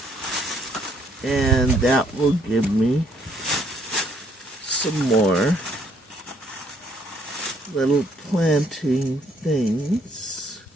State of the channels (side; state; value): both; normal; correlation 0.67